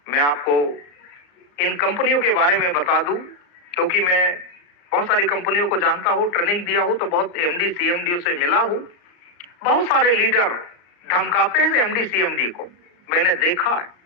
मैं आपको इन कंपनियों के बारे में बता दूं, क्योंकि मैं बहुत सारी कंपनियों को जानता हूं, ट्रेनिंग दिया हूं, तो बहुत एमडी सीएमडी से मिला हूं। बहुत सारे लीडर धमकाते हैं एमडी सीएमडी को। मैंने देखा है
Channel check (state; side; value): late; right; 34 ms